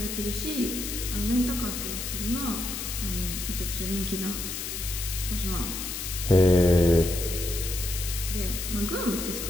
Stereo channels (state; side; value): noise; left; hiss, 5 dB below the sound